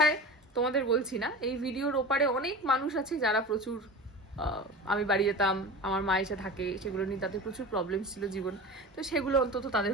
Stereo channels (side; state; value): both; normal; correlation 0.32